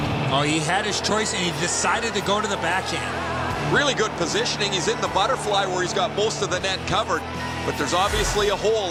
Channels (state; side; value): identical; both; correlation 1.00